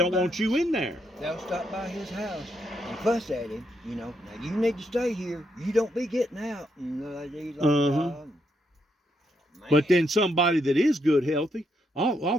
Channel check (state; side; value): normal; both; correlation 0.78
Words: want you in there. They'll stop by his house and fuss at him, you know. Now, you need to stay here. You don't be getting out. And But then somebody that is good, healthy, all